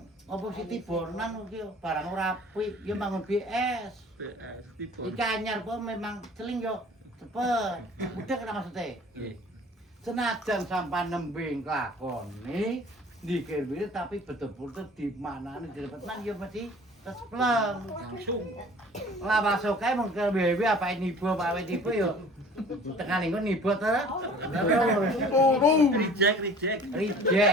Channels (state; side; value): normal; both; correlation 0.47